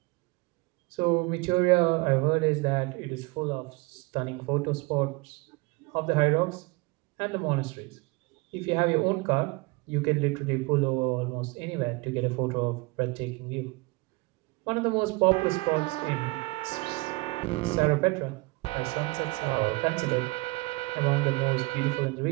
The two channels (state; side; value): quieter; left; 25.4 dB